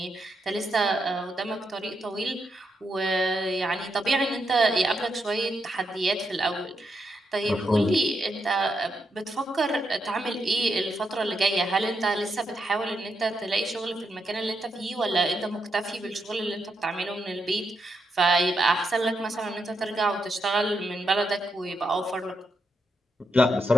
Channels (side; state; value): both; normal; correlation 0.82